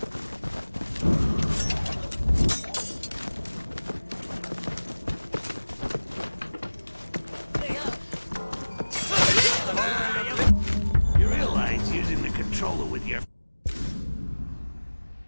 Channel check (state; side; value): inverted; both; correlation -1.00